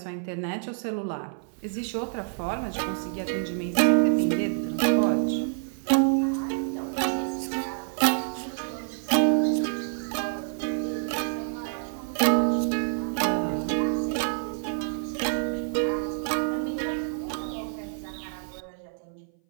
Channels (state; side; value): silent; left; 57 dB below the other